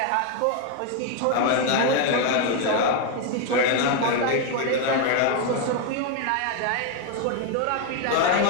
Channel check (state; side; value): different; both; correlation 0.01